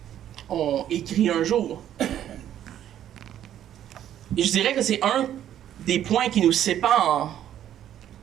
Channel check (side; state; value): left; quieter; 11.0 dB